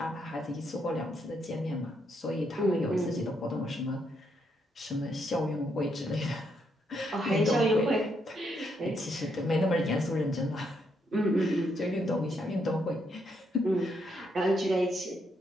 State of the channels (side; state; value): both; normal; correlation 0.77